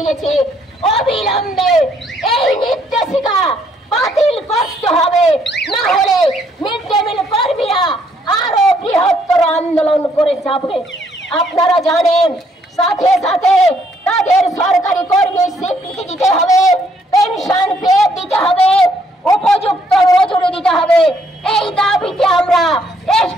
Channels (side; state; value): both; normal; correlation 0.69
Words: অবিলম্বে এই নির্দেশিকা বাতিল করতে হবে, না হলে মিড ডে মিল কর্মীরা আরো বৃহত্তর আন্দোলন করে যাবে। আপনারা জানেন, সাথে সাথে তাদের সরকারি কর্মীর স্বীকৃতি দিতে হবে, পেনশন পেয়ে দিতে হবে, উপযুক্ত মজুরি দিতে হবে। এই দাবিতে আমরা